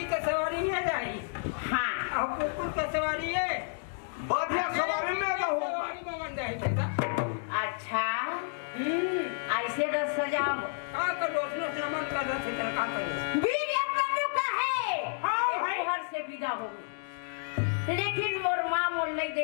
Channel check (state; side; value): silent; right; digital silence